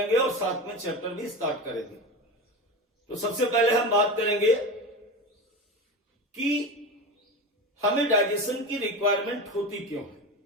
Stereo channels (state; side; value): normal; both; correlation 0.25